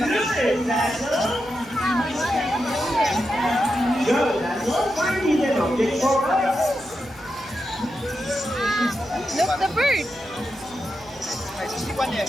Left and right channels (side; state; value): right; noise; hum, 25 dB below the sound